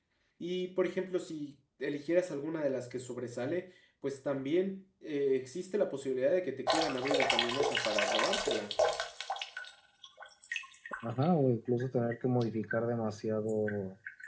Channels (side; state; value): both; identical; correlation 1.00